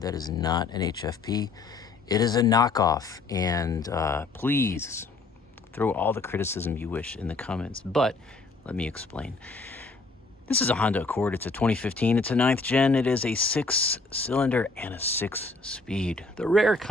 is not an HFP. It is a knockoff, and please throw all the criticism you wish in the comments, but let me explain. This is a Honda Accord. It's a 2015. It's a 9th gen. It is a 6-cylinder and a 6-speed. The rare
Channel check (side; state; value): right; quieter; 3.7 dB